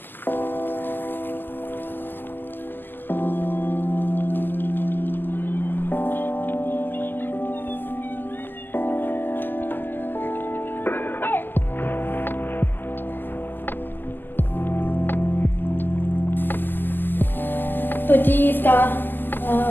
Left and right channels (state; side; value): late; right; 0.092 ms